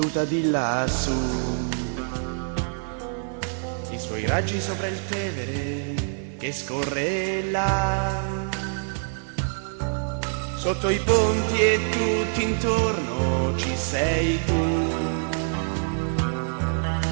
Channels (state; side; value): silent; left; 61 dB below the other